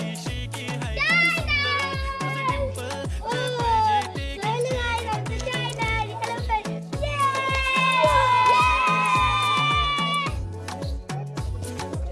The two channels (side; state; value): both; identical; correlation 1.00